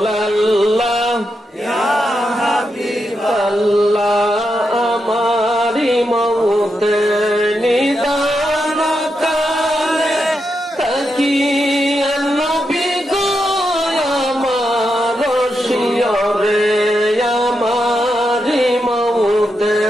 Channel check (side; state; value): both; normal; correlation 0.85